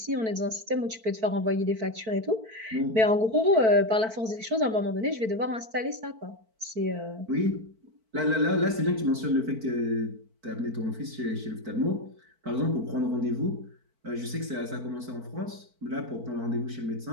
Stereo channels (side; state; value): left; late; 4.5 ms